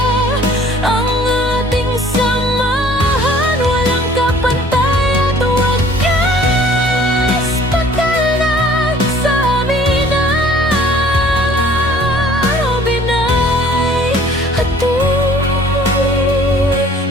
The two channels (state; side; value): normal; both; correlation 0.53